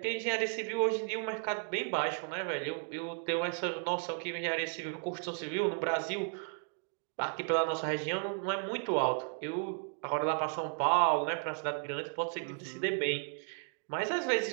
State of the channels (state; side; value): silent; left; 55 dB below the other